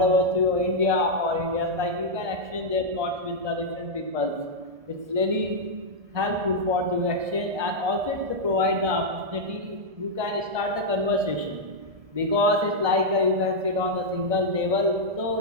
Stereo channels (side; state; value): left; late; 1.2 ms